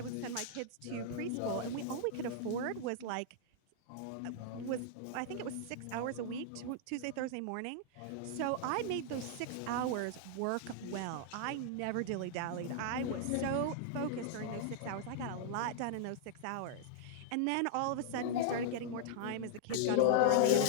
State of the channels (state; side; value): different; both; correlation -0.01